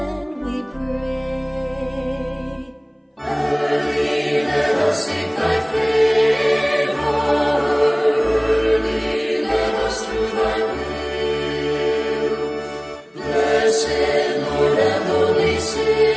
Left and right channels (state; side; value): identical; both; correlation 1.00